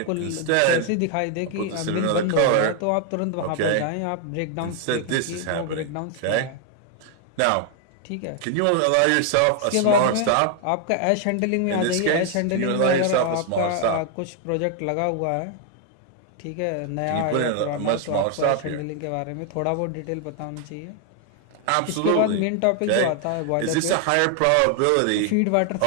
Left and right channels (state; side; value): different; both; correlation 0.00